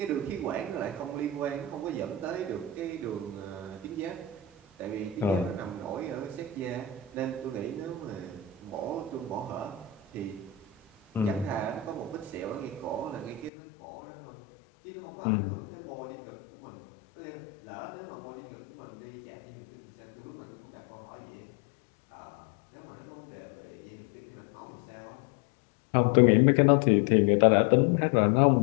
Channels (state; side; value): drops out; right; at 13.5 s